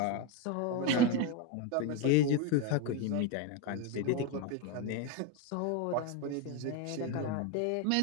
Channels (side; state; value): both; different; correlation 0.03